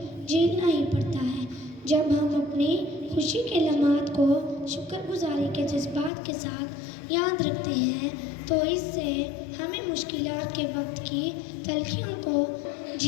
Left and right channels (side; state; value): right; drops out; at 6.1 s